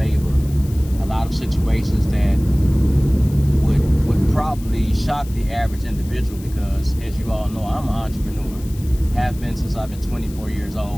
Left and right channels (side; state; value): left; noise; hiss, 20 dB below the sound